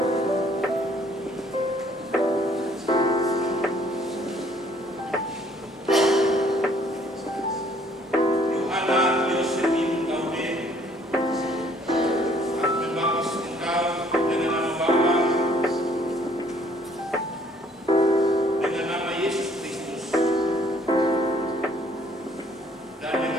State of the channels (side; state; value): both; normal; correlation 0.61